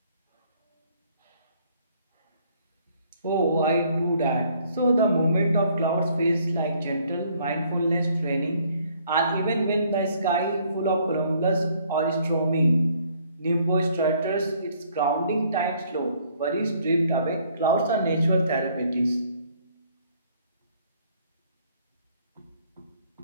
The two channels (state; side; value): inverted; both; correlation -0.63